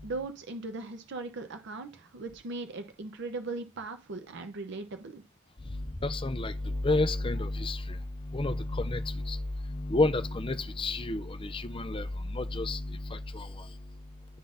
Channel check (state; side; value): normal; both; correlation 0.70